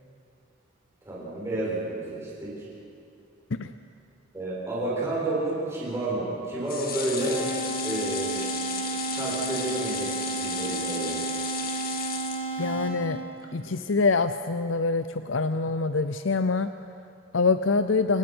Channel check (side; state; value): both; normal; correlation -0.03